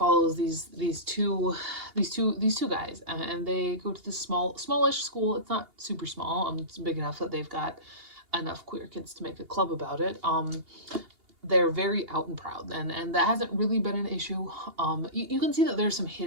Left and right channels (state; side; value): late; left; 2.8 ms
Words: these two guys, and they go to this smallish school. It's not super small. It's big enough that they've got enough queer kids to make a club about it. They're very out and proud, and that hasn't really been an issue. You can see that there's some